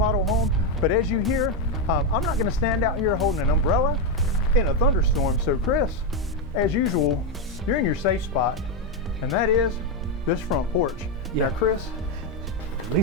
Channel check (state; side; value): normal; both; correlation 0.06